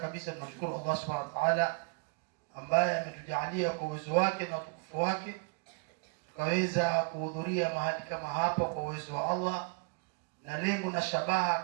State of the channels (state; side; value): quieter; left; 32.1 dB